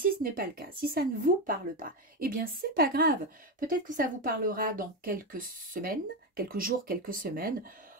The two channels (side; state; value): both; normal; correlation 0.13